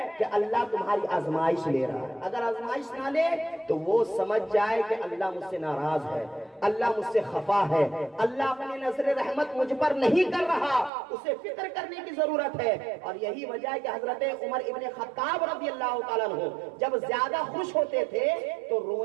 کہ اللہ تمہاری آزمائش لے رہا ہے۔ اگر آزمائش نہ لے تو وہ سمجھ جائے کہ اللہ مجھ سے ناراض ہے، اللہ مجھ سے خفا ہے، اللہ اپنی نظر رحمت مجھ پر نہیں کر رہا، اسے فکر کرنے کی ضرورت ہے۔ اور یہی وجہ ہے کہ حضرت عمر ابن خطاب رضی اللہ تعالیٰ عنہ جب زیادہ خوش ہوتے تھے تو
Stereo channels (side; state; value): left; drops out; at 10.9 s